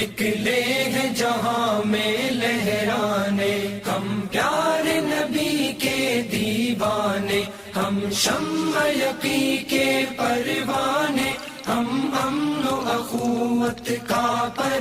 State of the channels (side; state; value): both; identical; correlation 1.00